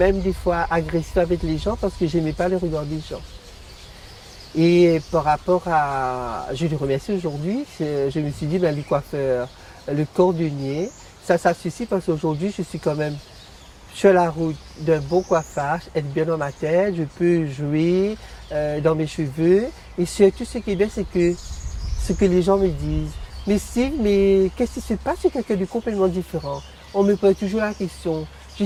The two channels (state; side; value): identical; both; correlation 1.00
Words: des fois agressive avec les gens parce que j'aimais pas le regard des gens. Et par rapport à, je le remercie aujourd'hui, je me suis dit, ben, le coiffeur, le cordonnier, ça suffit parce qu'aujourd'hui, je suis quand même sur la route d'un bon coiffage, être bien dans ma tête, je peux jouer dans mes cheveux. Et surtout, ce qui est bien, c'est que ce que les gens me disent. Mais Steve, mais qu'est-ce qui se passe? C'est quelqu'un de complètement différent. On me pose toujours la question, je